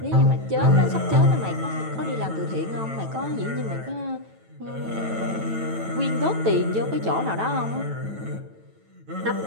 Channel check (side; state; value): left; late; 9.1 ms